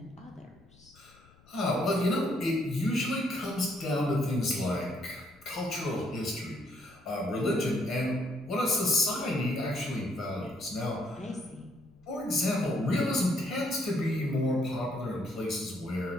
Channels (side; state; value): left; noise; rumble, 27 dB below the sound